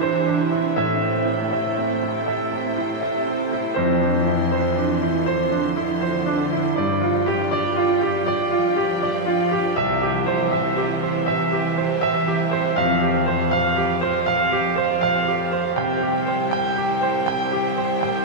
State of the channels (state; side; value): late; right; 18 ms